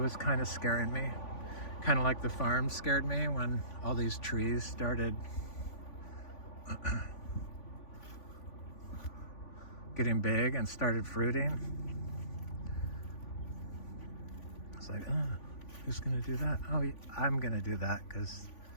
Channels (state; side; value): late; right; 3.5 ms